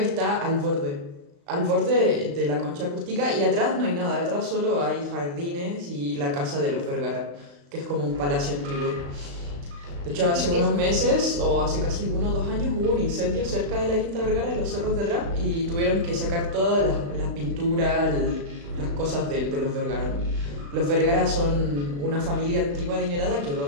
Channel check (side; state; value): left; late; 35 ms